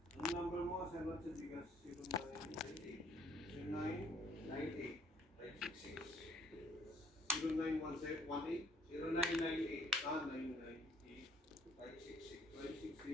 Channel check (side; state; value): both; normal; correlation 0.62